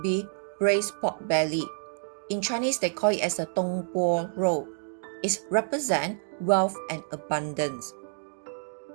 be braised pork belly. In Chinese, they call it as a dong bo roll. It represents wealth and abundance.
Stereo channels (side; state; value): left; silent; digital silence